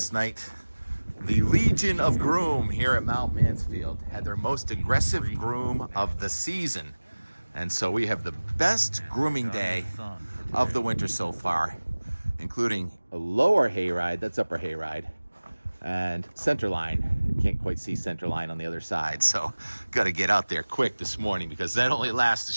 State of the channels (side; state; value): both; inverted; correlation -1.00